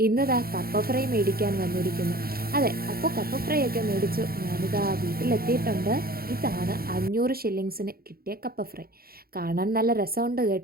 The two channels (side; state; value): left; late; 0.44 ms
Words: ഇന്നിതാ കപ്പ ഫ്രൈ മേടിക്കാൻ വന്നിരിക്കുന്നു. അതെ, അപ്പോൾ കപ്പ ഫ്രൈ ഒക്കെ മേടിച്ചു ഞാനിതാ വീട്ടിലെത്തിയിട്ടുണ്ട്. ഇതാണ് 500 ഷില്ലിങ്സിന് കിട്ടിയ കപ്പ ഫ്രൈ. കാണാൻ നല്ല രസമുണ്ട്